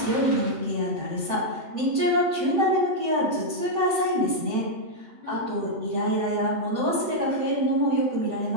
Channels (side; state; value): left; late; 7.8 ms